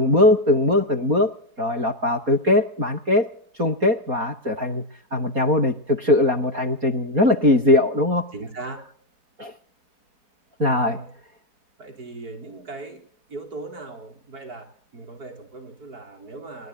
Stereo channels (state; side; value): late; left; 4.2 ms